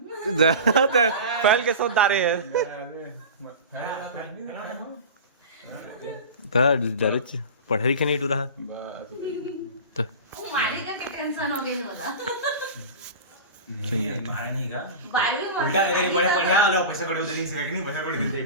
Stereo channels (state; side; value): inverted; both; correlation -0.31